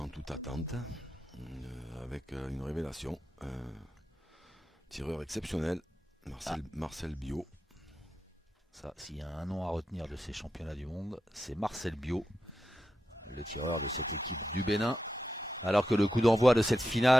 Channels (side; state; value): both; normal; correlation 0.88